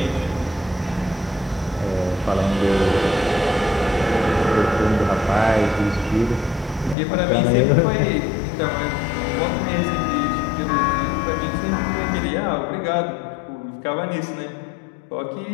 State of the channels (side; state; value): right; drops out; at 7.0 s